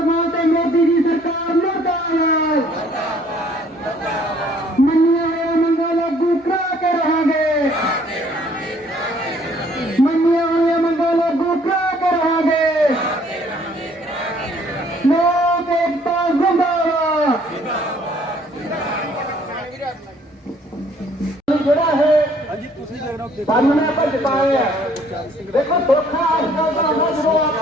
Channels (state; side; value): normal; both; correlation 0.60